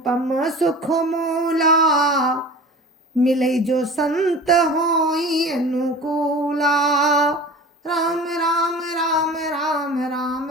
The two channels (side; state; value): both; normal; correlation 0.37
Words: सुख मूला, मिले जो संत होई अनुकूला। राम राम राम राम राम